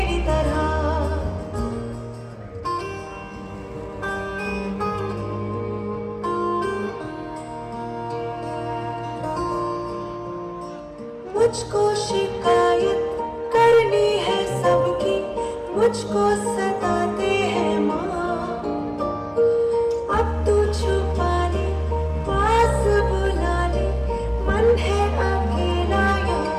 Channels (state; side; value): identical; both; correlation 1.00